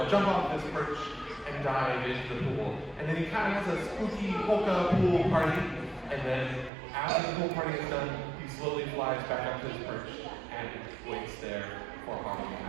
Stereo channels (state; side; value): drops out; left; at 6.7 s